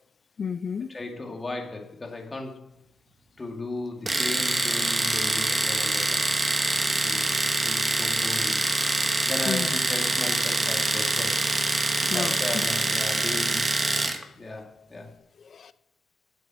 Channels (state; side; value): normal; both; correlation 0.93